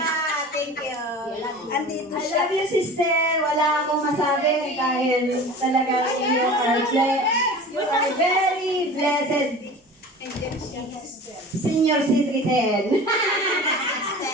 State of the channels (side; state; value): both; normal; correlation 0.38